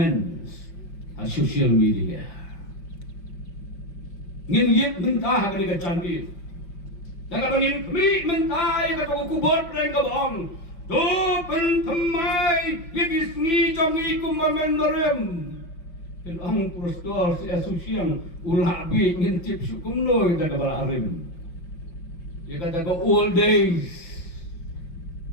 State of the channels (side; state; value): right; late; 5.6 ms